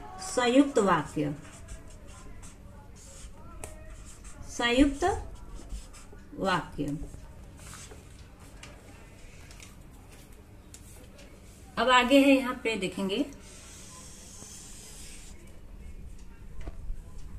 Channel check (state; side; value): identical; both; correlation 1.00